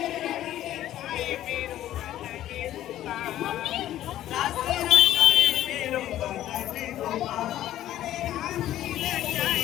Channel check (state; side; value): quieter; right; 13.0 dB